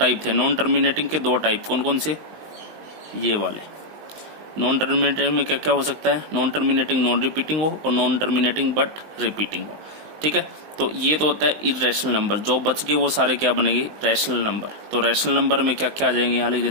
थे। नॉन टर्मिनेटिंग के 2 टाइप कौन कौन से? ये वाले। नॉन टर्मिनेटिंग में क्या क्या हो सकता है, नॉन टर्मिनेटिंग नॉन रिपीटिंग हो और नॉन टर्मिनेटिंग बट रिपीटिंग हो, ठीक है। तो ये तो होता है इरेशनल नंबर। जो बच गए वो सारे क्या बनेंगे, रैशनल नंबर। तो रैशनल नंबर में क्या क्या आ जाएंगे, यहाँ लिख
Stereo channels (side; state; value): left; late; 19 ms